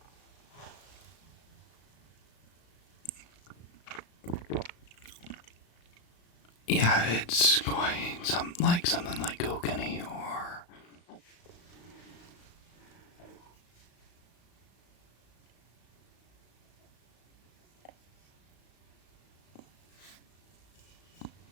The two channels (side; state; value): right; late; 35 ms